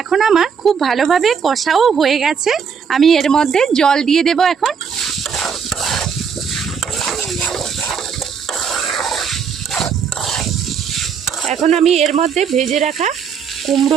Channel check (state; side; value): quieter; left; 6.7 dB